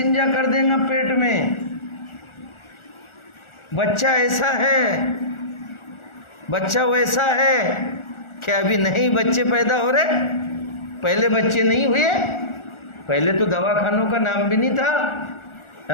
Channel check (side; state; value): right; late; 1.4 ms